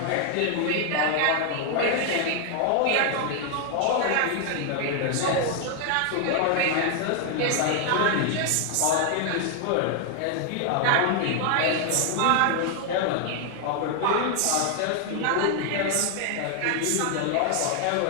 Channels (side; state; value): both; different; correlation 0.00